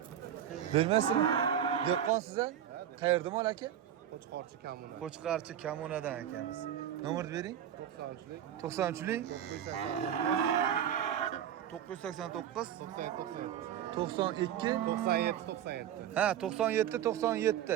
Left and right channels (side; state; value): left; quieter; 10.2 dB